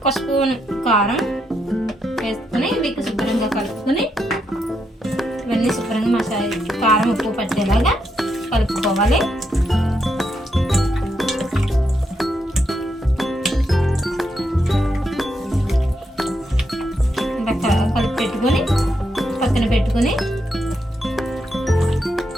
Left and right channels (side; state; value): both; normal; correlation 0.80